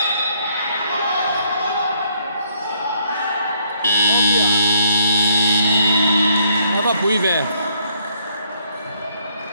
Apa bui về.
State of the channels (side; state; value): both; inverted; correlation -0.69